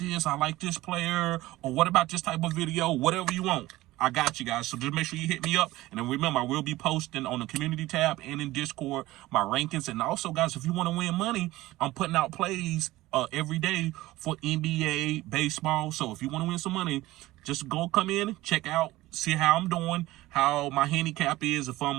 I like this player. Or what about this type of video? Whatever you want. I got you guys. So just make sure you hit me up. And then remember, I will be posting on the community tab and in Discord my rankings. And also, guys, if you want to win money, I'm putting out plays every day for NBA, baseball. So if you want to win some money, just come in, check out, see how I'm doing, how my handicap is, if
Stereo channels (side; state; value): left; quieter; 17.7 dB